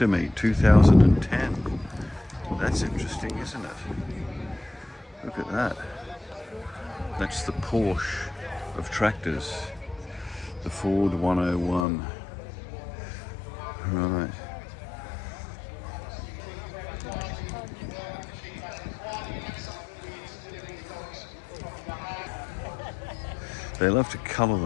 Meet 2010. That's interesting, isn't it? Look at that. That's the Porsche of tractors. The Ford 101. Right. They love to colour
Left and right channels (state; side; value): drops out; right; at 11.9 s